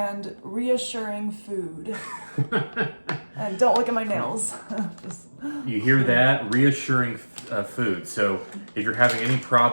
reassuring food. And don't look at my nails. You hear that? Reassuring food. So if you're having any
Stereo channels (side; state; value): both; inverted; correlation -1.00